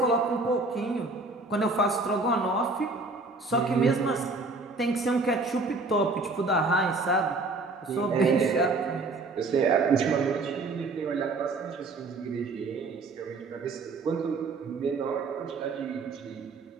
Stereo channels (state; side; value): quieter; left; 3.5 dB